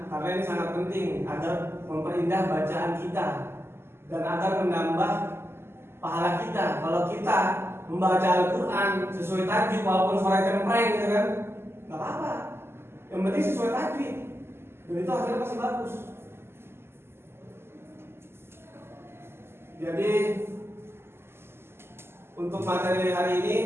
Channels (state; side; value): late; left; 0.12 ms